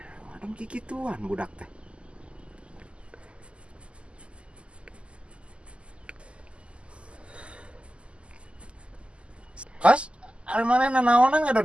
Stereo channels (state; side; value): late; left; 0.055 ms